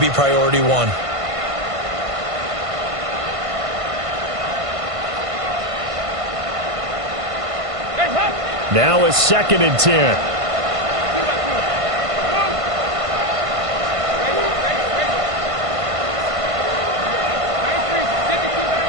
priority one. Now a 2nd and 10.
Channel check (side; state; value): left; late; 1.5 ms